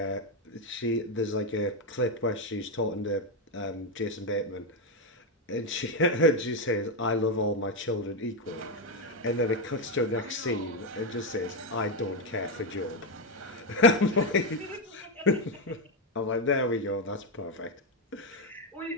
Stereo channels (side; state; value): both; normal; correlation 0.06